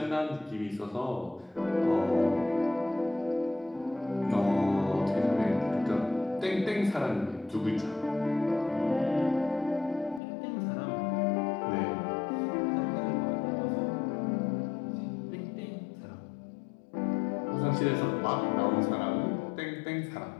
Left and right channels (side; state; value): right; drops out; at 10.2 s